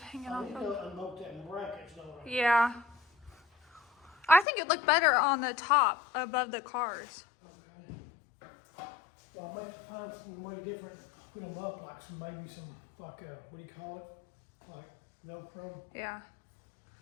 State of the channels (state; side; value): drops out; right; at 4.5 s